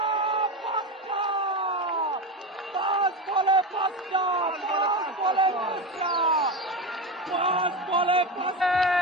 5 বলে 5টা 5 বলে 5টা।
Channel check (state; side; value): normal; both; correlation 0.19